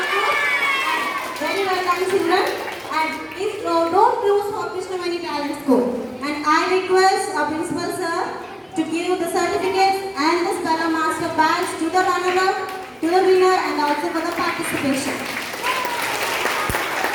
Very well done children, and please don't lose for Krishnamani Talent School. And I request our principal sir to give the certificates and the Spella Master badge to the runner-up, to the winner and also for the participation.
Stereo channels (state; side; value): identical; both; correlation 1.00